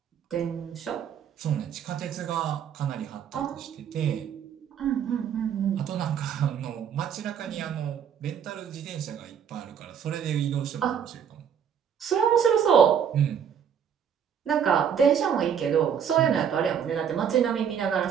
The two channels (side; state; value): left; quieter; 8.1 dB